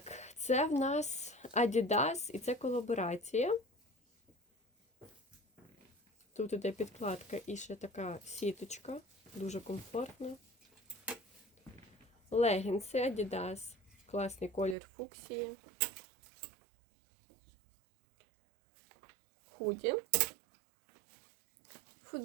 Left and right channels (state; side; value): drops out; left; at 14.8 s